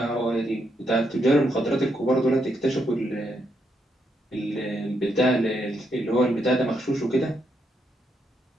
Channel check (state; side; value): normal; both; correlation 0.79